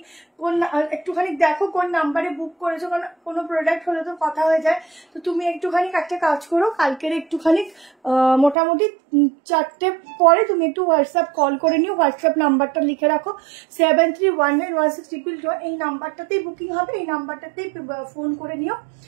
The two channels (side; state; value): left; drops out; at 8.6 s